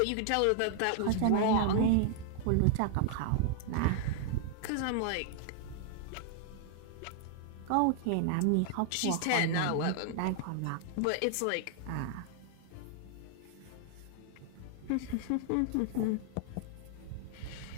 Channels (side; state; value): both; different; correlation 0.00